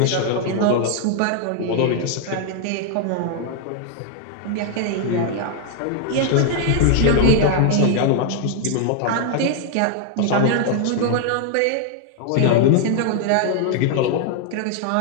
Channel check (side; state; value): both; different; correlation 0.00